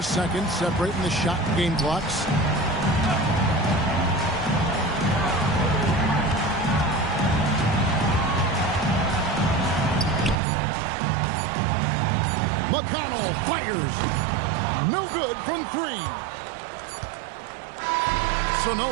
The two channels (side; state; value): left; drops out; at 10.4 s